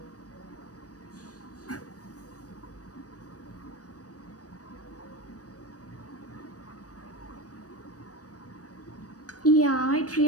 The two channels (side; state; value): right; late; 0.67 ms